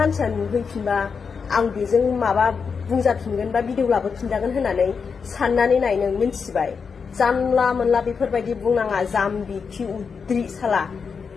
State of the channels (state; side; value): quieter; right; 5.7 dB